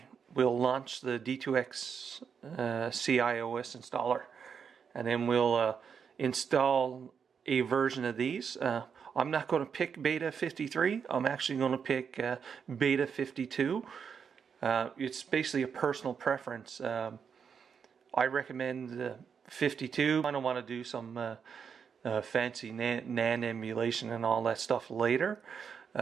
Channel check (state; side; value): quieter; left; 6.7 dB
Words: we'll launch the D2X cIOS installer, and then we'll install a version of these. I'm not going to pick beta 53. I'm actually going to pick beta 52. It's basically a personal preference. I recommend 52. I don't want to do some fancy NAND emulation and all that stuff later.